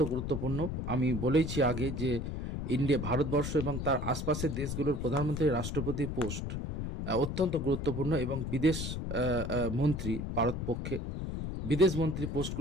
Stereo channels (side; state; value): left; noise; rumble, 4 dB below the sound